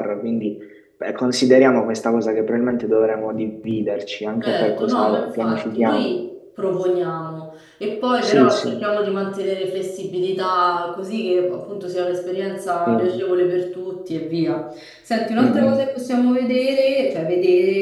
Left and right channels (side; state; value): both; identical; correlation 1.00